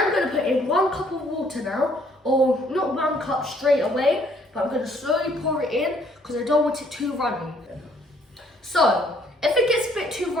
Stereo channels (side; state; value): both; normal; correlation 0.64